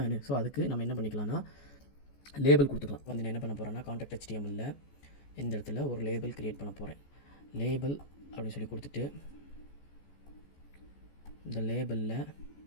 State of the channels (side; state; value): right; late; 14 ms